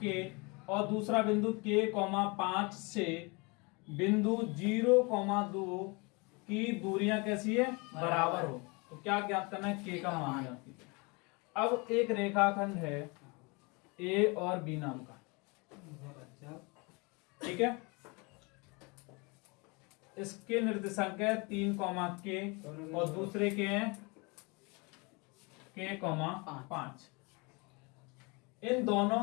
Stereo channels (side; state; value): right; quieter; 28.7 dB